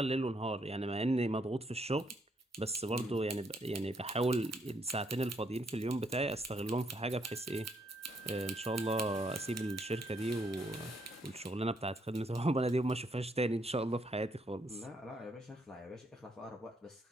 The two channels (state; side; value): normal; both; correlation 0.73